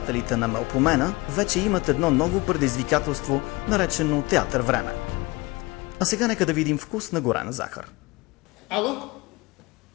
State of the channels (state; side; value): quieter; right; 22.9 dB